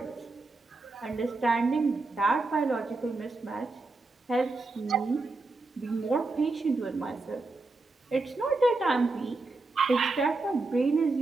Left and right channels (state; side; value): quieter; left; 3.4 dB